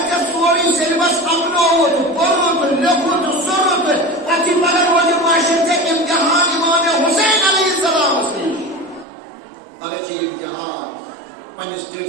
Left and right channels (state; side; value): drops out; left; at 9.1 s